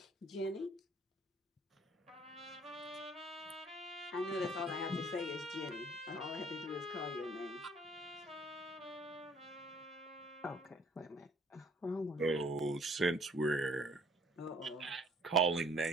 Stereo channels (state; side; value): normal; both; correlation 0.58